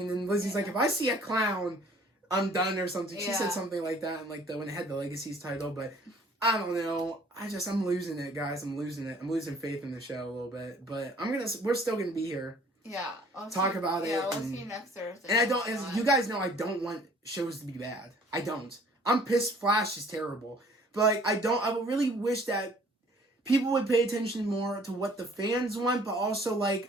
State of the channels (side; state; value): both; normal; correlation 0.55